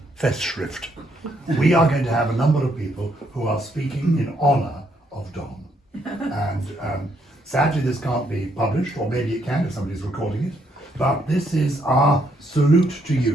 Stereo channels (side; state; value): both; normal; correlation 0.73